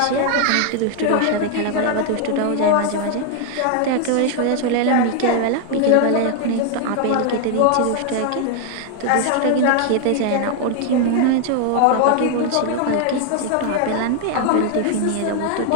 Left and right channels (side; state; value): both; different; correlation 0.00